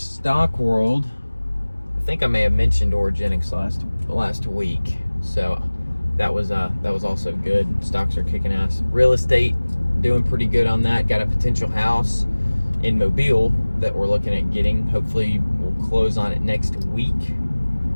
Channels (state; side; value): inverted; both; correlation -1.00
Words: world, I think I may have mentioned Origenics last week. So that was also good. Stocks are kicking ass. Real estate, doing pretty good on that. Got a potential house in Mobile that we're looking at getting. Hopefully we'll close on it next week,